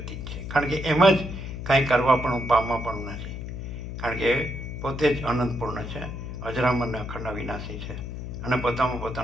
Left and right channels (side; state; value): left; noise; hum, 7 dB below the sound